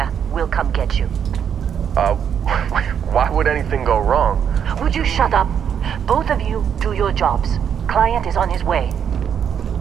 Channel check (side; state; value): left; quieter; 8.2 dB